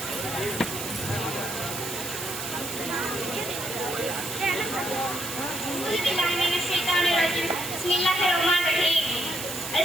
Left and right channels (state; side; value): noise; right; hiss, 6 dB below the sound